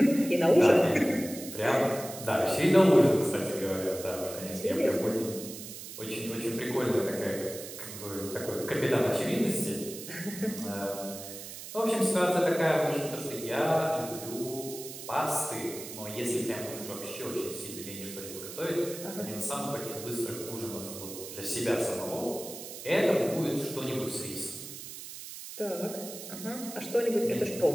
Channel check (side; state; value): right; noise; hiss, 11 dB below the sound